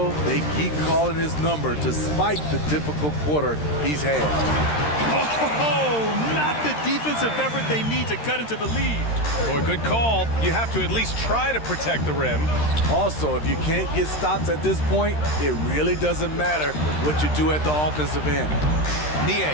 They keep calling his number despite the difficult quarter he's had. Oh, not the defensive effort they need to cut into the lead. Boy, good call. You have to at least try to protect the rim. Also, if you can't get stops at this point, it really doesn't matter what you do at the offensive end.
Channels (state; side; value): late; right; 13 ms